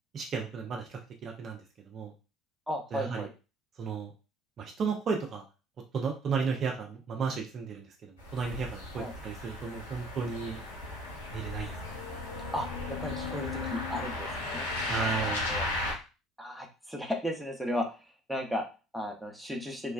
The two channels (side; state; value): both; normal; correlation 0.55